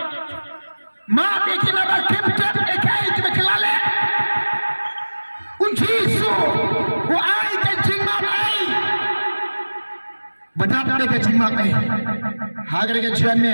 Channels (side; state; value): both; inverted; correlation -1.00